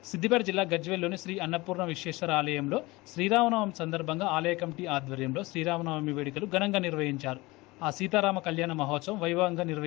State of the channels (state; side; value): quieter; right; 22.0 dB